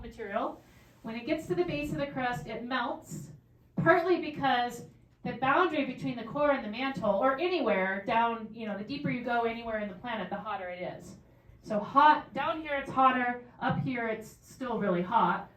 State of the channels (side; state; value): both; identical; correlation 1.00